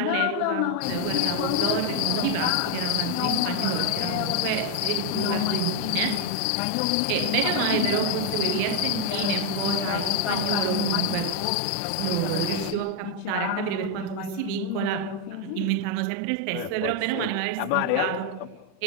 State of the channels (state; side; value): different; both; correlation 0.01